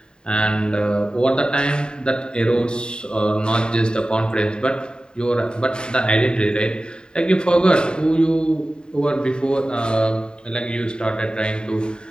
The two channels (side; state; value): right; late; 0.048 ms